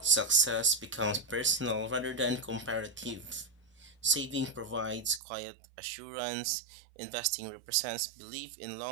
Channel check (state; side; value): drops out; left; at 5.2 s